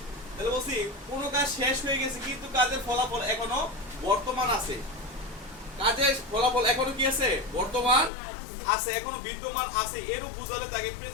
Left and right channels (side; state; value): right; drops out; at 8.1 s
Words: তাহলে বলছি কোনো কাজ শেষ হয়ে গেছে কিন্তু কাজের ফলাফল এখনো বর্তমান আছে। কাজের ফলাফল এখনো কি আছে? বর্তমান আছে, এখনো বিদ্যমান আছে। এরও বুঝালে তাকে